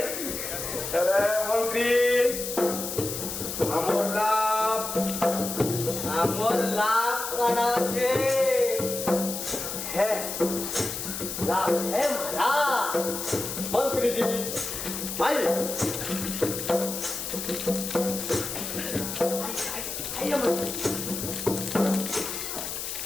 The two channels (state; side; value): noise; left; hiss, 5 dB below the sound